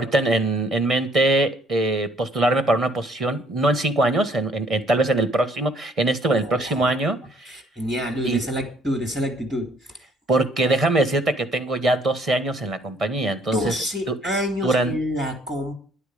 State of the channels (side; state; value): both; normal; correlation 0.62